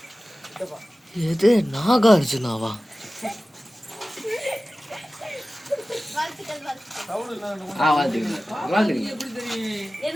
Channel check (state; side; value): normal; both; correlation 0.96